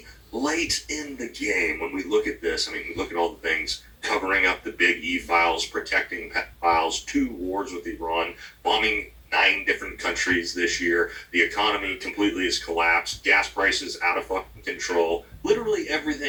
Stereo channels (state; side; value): identical; both; correlation 1.00